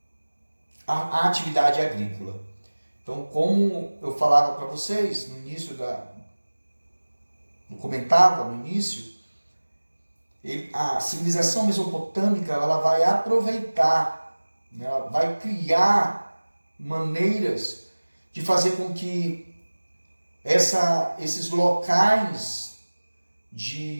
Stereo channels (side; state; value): both; inverted; correlation -1.00